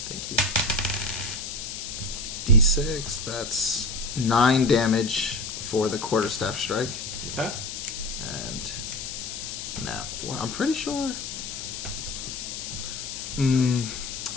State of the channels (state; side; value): noise; left; hiss, 7 dB below the sound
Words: you. D6, that's 9 damage for the quarterstaff strike. Okay. And now, well, I'm pretty sure.